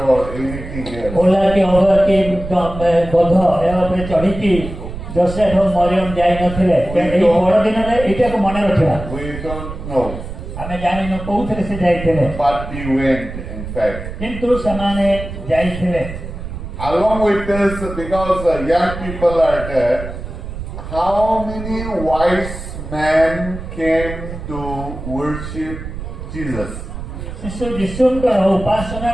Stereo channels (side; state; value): right; noise; rumble, 9 dB below the sound